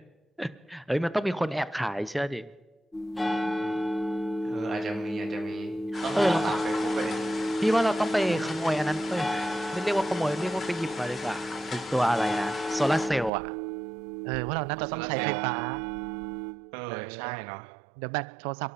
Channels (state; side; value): drops out; left; at 13.3 s